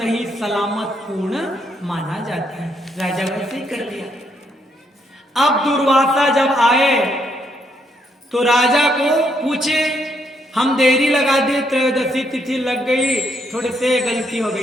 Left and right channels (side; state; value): both; normal; correlation 0.74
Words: सलामत पूर्ण माना जाता है। राजा वैसे ही कर लिया। अब दुर्वासा जब आए तो राजा को पूछे, हम देरी लगा दिए, त्रयोदशी तिथि लग गई, थोड़े से गलती हो गई,